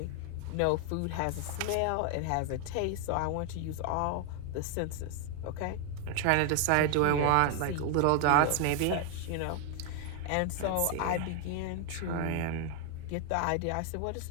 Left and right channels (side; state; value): both; different; correlation 0.00